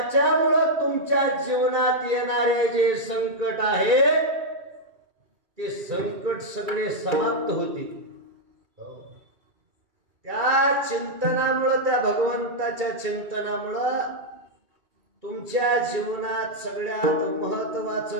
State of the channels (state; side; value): late; left; 2.3 ms